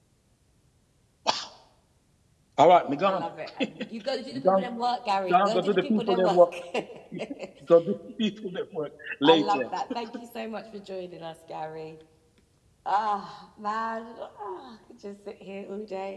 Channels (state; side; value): identical; both; correlation 1.00